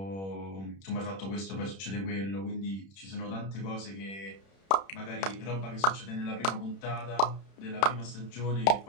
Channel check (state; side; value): late; right; 31 ms